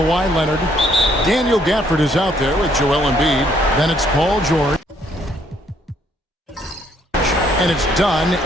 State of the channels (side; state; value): both; normal; correlation 0.67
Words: Leonard. Daniel Gafford is out there with Joel Embiid. Then it's Paul George. And it's done